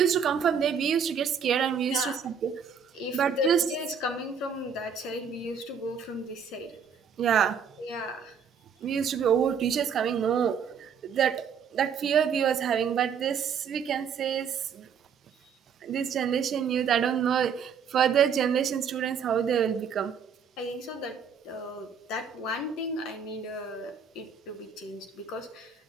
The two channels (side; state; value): left; quieter; 6.7 dB